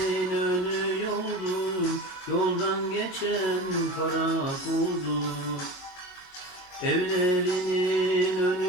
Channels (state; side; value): late; right; 22 ms